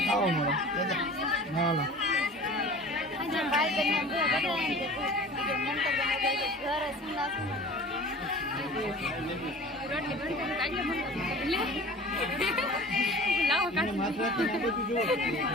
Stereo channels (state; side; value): normal; both; correlation 0.41